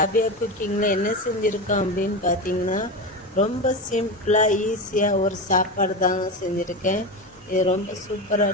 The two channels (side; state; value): both; normal; correlation 0.21